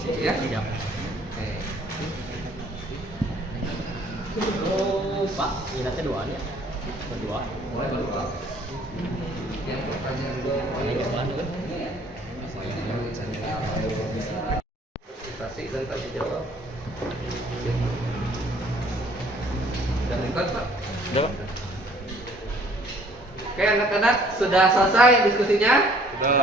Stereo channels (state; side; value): normal; both; correlation 0.58